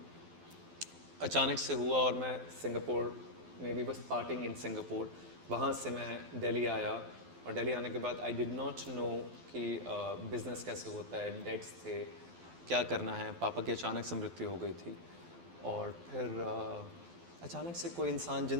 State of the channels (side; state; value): left; late; 12 ms